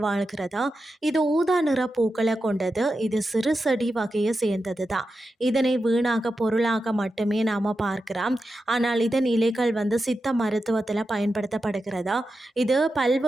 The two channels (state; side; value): normal; both; correlation 0.90